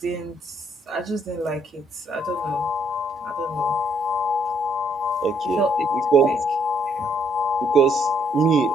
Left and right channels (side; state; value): both; normal; correlation 0.70